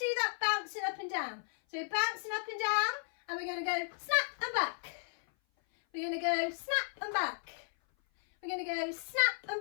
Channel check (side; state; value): right; silent; 55 dB below the other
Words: that bouncing up and down. So we're bouncing up and down, and we're going to go snap and back. We're going to go snap and back. We're going to go snap and